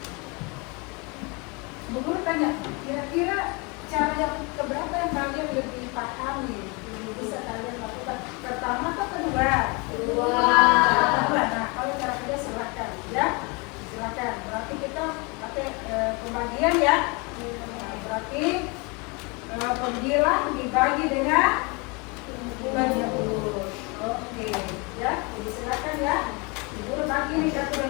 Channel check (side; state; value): right; quieter; 29.5 dB